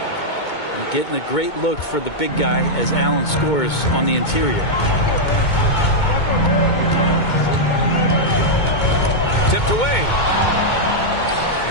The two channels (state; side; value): late; right; 2.2 ms